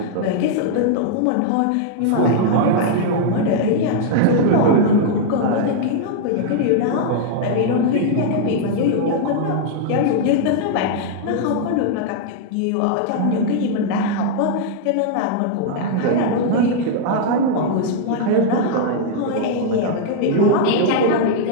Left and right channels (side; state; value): both; different; correlation -0.01